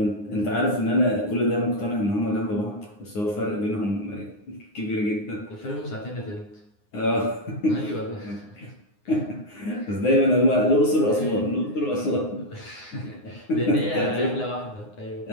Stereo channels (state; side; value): late; right; 9.7 ms